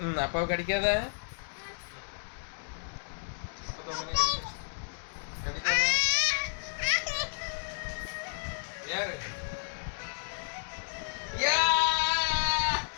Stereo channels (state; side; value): silent; right; digital silence